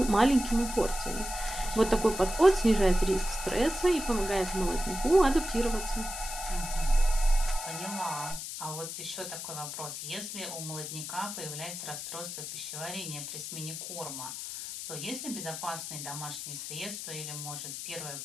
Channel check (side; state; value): left; noise; hiss, 7 dB below the sound